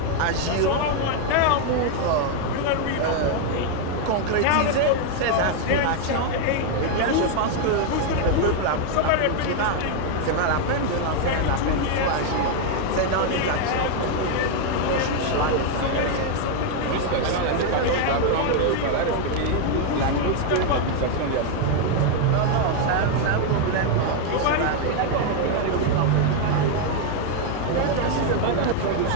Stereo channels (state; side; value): different; both; correlation 0.00